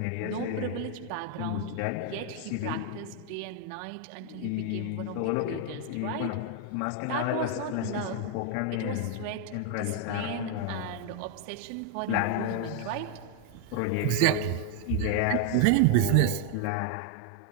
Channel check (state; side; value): different; both; correlation 0.00